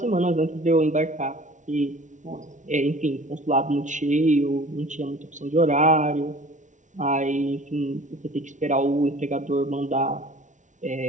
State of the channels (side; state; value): left; late; 0.36 ms